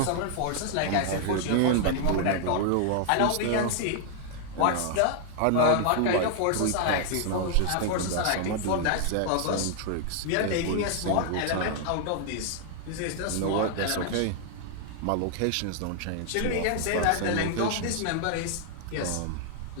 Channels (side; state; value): both; different; correlation 0.00